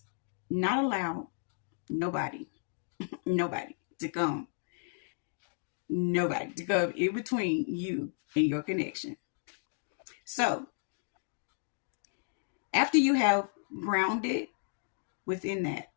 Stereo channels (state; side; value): silent; right; digital silence